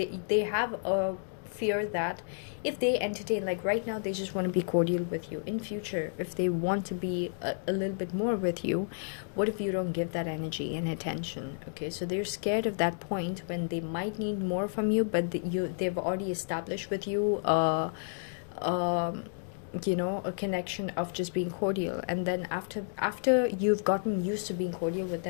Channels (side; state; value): right; silent; digital silence